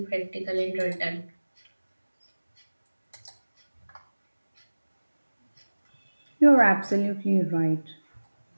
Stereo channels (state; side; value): inverted; both; correlation -1.00